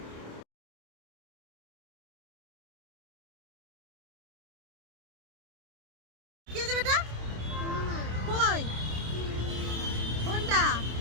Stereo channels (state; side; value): late; left; 27 ms